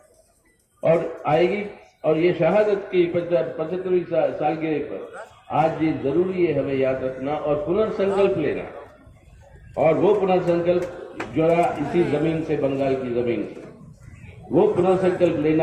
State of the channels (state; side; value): identical; both; correlation 1.00